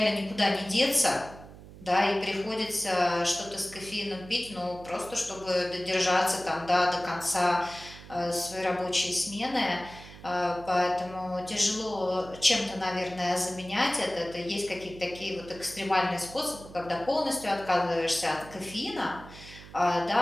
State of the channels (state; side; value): noise; right; hum, 17 dB below the sound